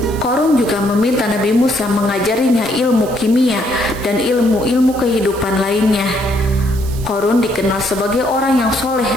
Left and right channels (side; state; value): right; noise; hiss, 17 dB below the sound